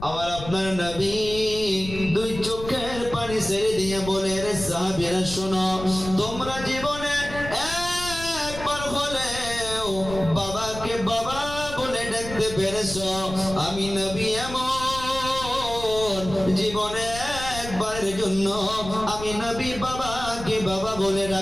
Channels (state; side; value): noise; left; rumble, 11 dB below the sound